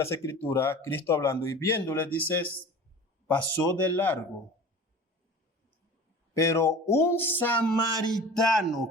Escrituras, Cristo hablando, y viéndole, dice, pasó de largo. Pero un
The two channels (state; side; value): normal; both; correlation 0.39